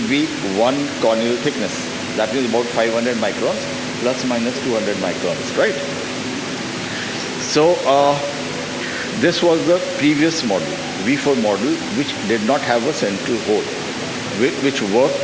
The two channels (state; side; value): identical; both; correlation 1.00